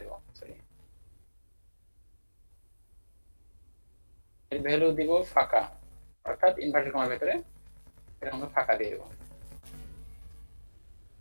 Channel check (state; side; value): inverted; both; correlation -1.00